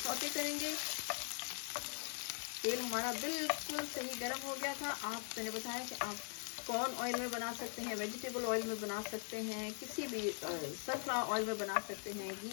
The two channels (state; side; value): silent; right; 50 dB below the other